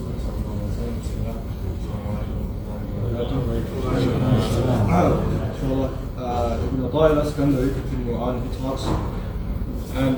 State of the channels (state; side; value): identical; both; correlation 1.00